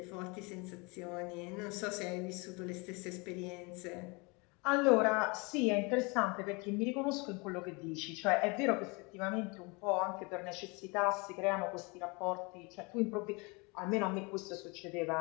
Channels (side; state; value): right; quieter; 28.8 dB